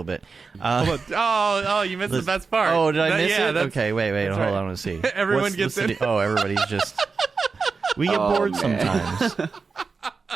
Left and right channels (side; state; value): left; quieter; 4.7 dB